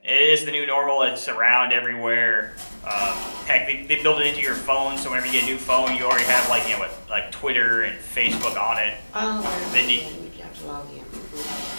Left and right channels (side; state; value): both; inverted; correlation -1.00